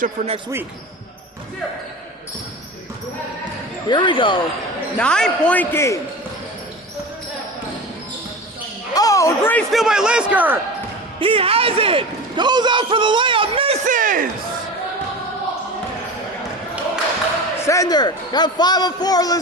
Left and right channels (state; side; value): normal; both; correlation 0.30